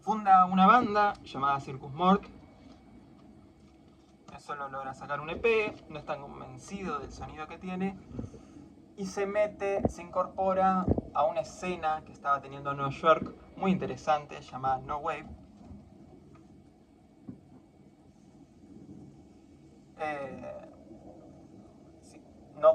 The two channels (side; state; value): both; identical; correlation 1.00